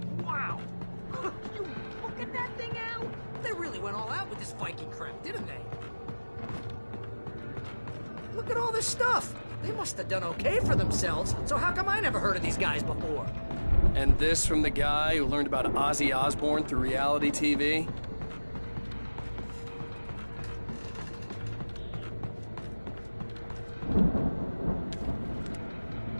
Wow. You look at that thing, Al. They really went all out with this Viking crap, didn't they? Look at all this stuff. They must have done okay for themselves. So how come I never heard of these guys before? And this from the guy who learned about Ozzy Osbourne through reality TV?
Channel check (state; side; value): inverted; both; correlation -1.00